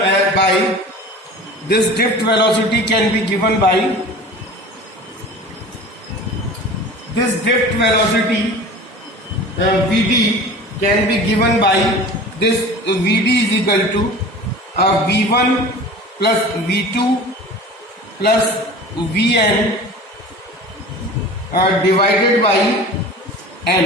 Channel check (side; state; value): both; normal; correlation 0.39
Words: this drift velocity can be given by this drift velocity Vd can be given by this Vd is equal to V1 plus V2 plus Vn divided by